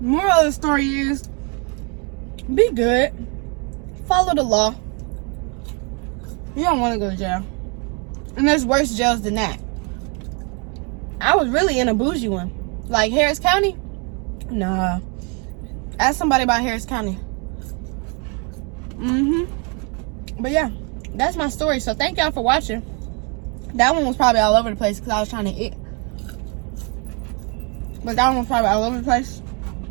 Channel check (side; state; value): left; quieter; 34.2 dB